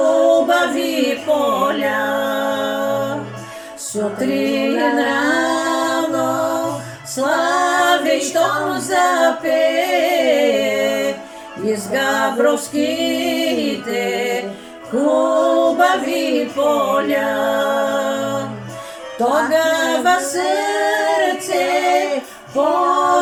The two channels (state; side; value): identical; both; correlation 1.00